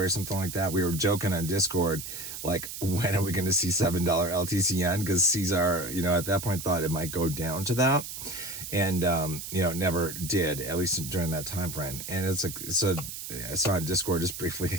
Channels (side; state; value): right; noise; hiss, 8 dB below the sound